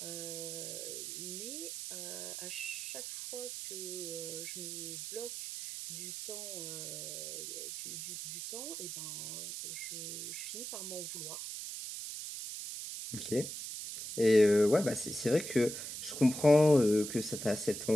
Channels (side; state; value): right; noise; hiss, 6 dB below the sound